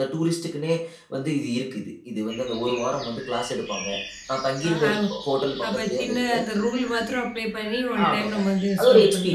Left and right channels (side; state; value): both; identical; correlation 1.00